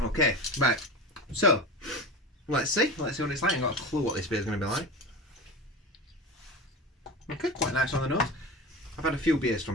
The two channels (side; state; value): both; normal; correlation 0.28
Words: right, so let's see what it's like. I've got a clue what this beer is going to be like. Okay, quite nice on the nose. I've had a few beers